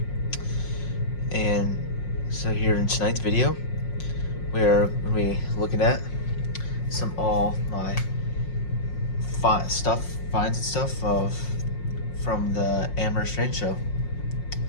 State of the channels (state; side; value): late; right; 5.5 ms